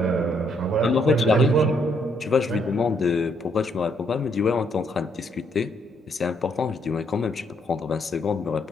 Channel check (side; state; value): both; normal; correlation 0.72